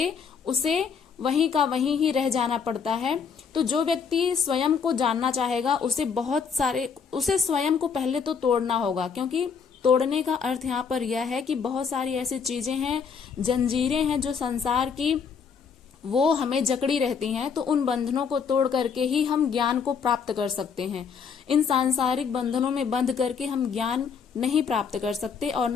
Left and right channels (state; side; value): quieter; right; 6.3 dB